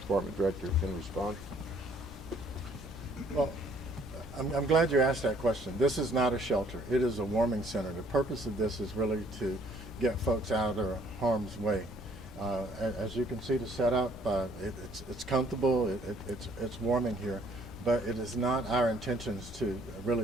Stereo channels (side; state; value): both; normal; correlation 0.62